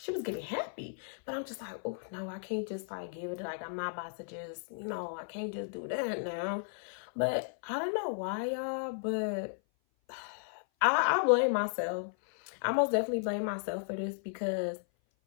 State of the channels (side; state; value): right; silent; 55 dB below the other